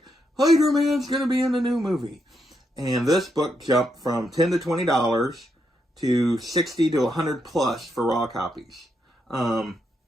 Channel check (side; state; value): both; normal; correlation 0.80